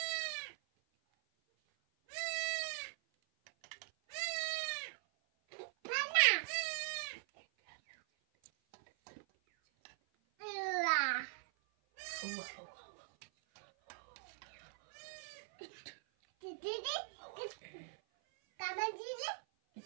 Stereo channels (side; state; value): left; silent; 50 dB below the other